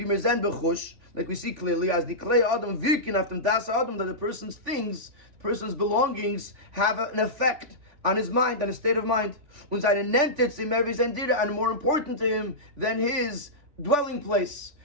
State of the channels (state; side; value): late; left; 3.5 ms